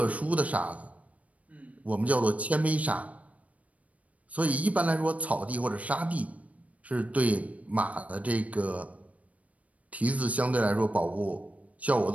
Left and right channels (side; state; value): left; late; 0.068 ms